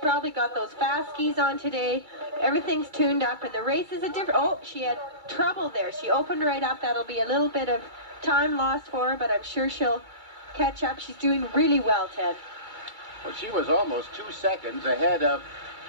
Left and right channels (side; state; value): left; late; 2.3 ms